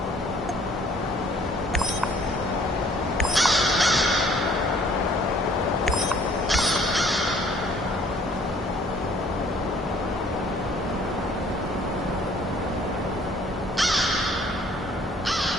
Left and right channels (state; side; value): normal; both; correlation 0.58